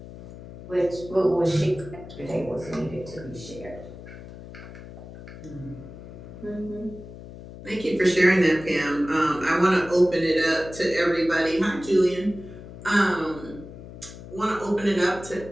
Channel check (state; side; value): noise; left; hum, 15 dB below the sound